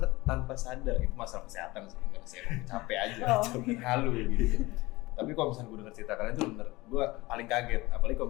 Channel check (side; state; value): right; quieter; 20.8 dB